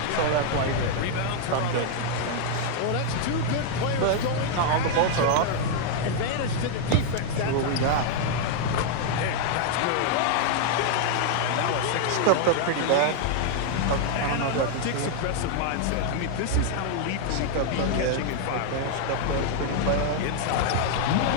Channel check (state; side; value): different; both; correlation 0.00